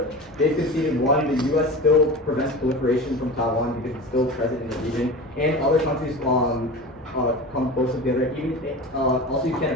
they've conceded one, the U.S. still prevents proliferation from Taiwan because it's still present in the region, and other countries come close together. Even also, you can't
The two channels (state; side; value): normal; both; correlation 0.31